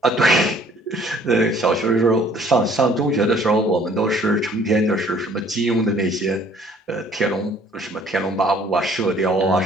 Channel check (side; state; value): both; normal; correlation 0.58